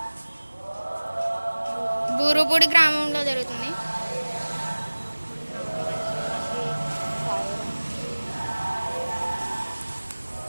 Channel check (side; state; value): both; inverted; correlation -1.00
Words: బూరుపూడి గ్రామంలో జరుగుతుంది.